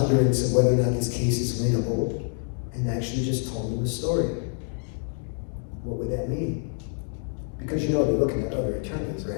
of whether or not this case is winnable and actually just told them the story? What would that mean? Because they're looking at other attorneys,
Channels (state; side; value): silent; right; 55 dB below the other